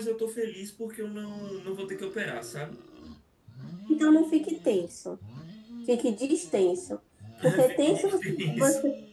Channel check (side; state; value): both; identical; correlation 1.00